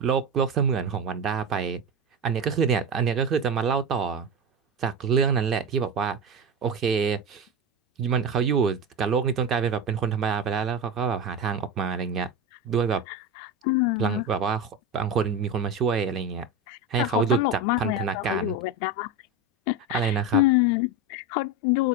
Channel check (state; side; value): normal; both; correlation 0.20